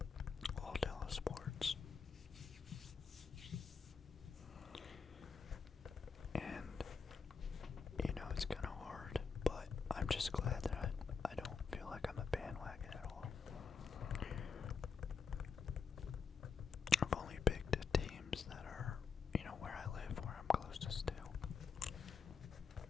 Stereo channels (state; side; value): quieter; right; 5.7 dB